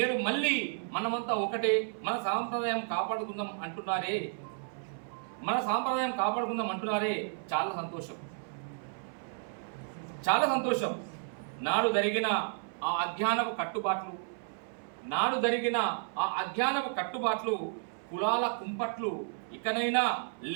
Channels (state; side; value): silent; left; 56 dB below the other